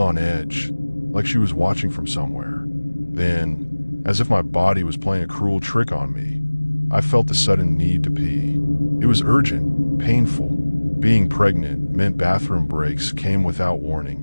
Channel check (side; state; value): both; inverted; correlation -1.00